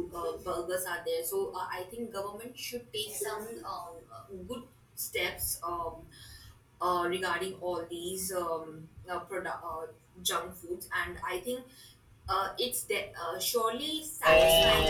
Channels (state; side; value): identical; both; correlation 1.00